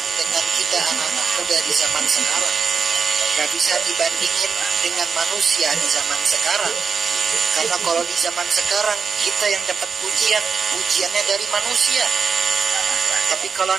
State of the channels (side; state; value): left; quieter; 5.5 dB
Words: dengan kita anak-anak muda di zaman sekarang. Gak bisa dibandingin dengan manusia di zaman sekarang. Karena kalau di zaman sekarang kita yang dapat pujiannya dari manusia. Tapi kalau